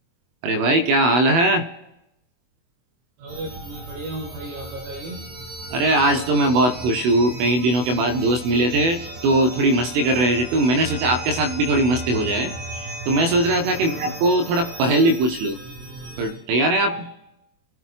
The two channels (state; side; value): late; left; 24 ms